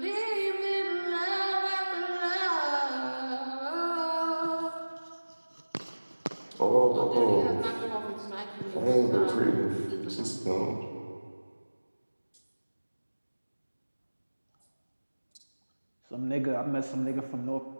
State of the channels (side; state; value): both; inverted; correlation -1.00